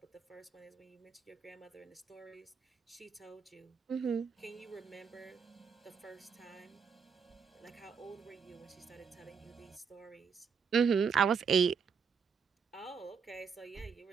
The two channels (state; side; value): quieter; left; 6.2 dB